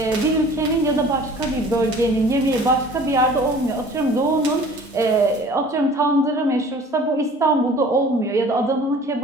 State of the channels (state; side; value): normal; both; correlation 0.48